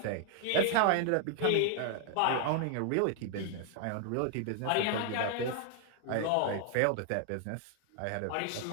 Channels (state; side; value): different; both; correlation 0.00